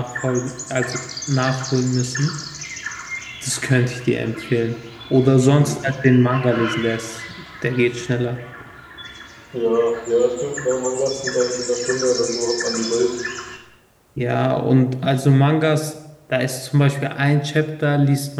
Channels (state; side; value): identical; both; correlation 1.00